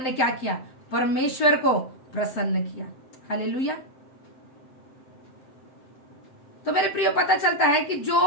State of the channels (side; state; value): right; late; 7.6 ms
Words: क्या किया? परमेश्वर को प्रसन्न किया। हालेलुया। तो मेरे प्रियो, पता चलता है कि